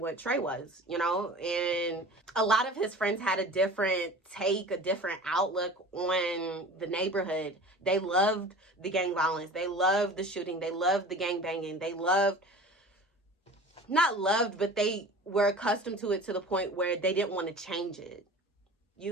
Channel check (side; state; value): both; normal; correlation 0.39